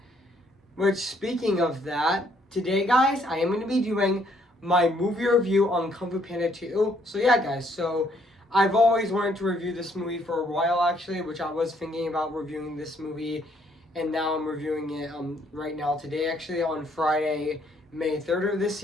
Which, speaking of that, today, guys, I am going to be doing my movie review on Kung Fu Panda 2. So yeah, guys. So I've always wanted to review this movie for a while, actually, which I was thinking about reviewing this movie, and now I'm reviewing it right now today, actually, on Friday, May 3rd of this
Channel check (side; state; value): both; normal; correlation 0.67